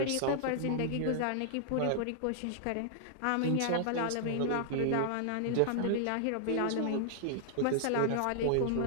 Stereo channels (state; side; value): different; both; correlation -0.01